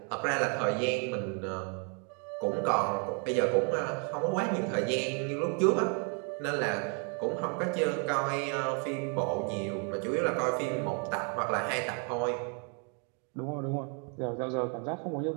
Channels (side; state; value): left; quieter; 39.2 dB